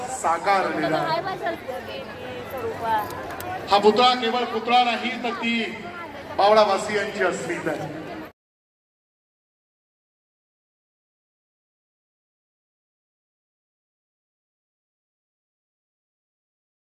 साकारलेलं आहे. हा पुतळा केवळ पुतळा नाही, तर ती बावडावासियांची अस्मिता आहे.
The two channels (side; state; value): both; identical; correlation 1.00